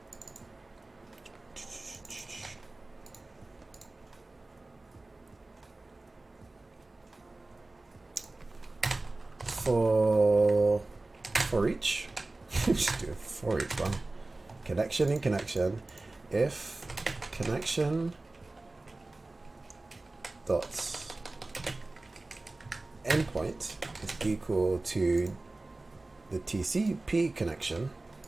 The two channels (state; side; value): quieter; left; 3.0 dB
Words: For each, just do it for each one. Connection in connection. If connection dot endpoint is equal to the TCP connection